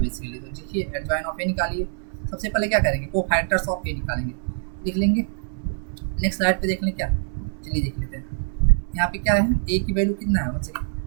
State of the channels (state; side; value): silent; left; 62 dB below the other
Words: तो देखिए एडजॉइन ऑफ ए निकालिए, सबसे पहले क्या करेंगे को फैक्टर्स ऑफ ए निकालेंगे, लिख लेंगे, नेक्स्ट स्लाइड पे देख लें क्या, चलिए देख लेते हैं यहाँ पे क्या है, ए की वैल्यू कितना है बच्चे,